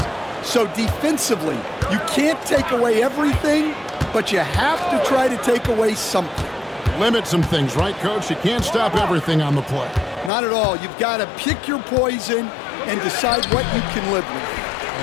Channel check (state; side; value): drops out; right; at 10.3 s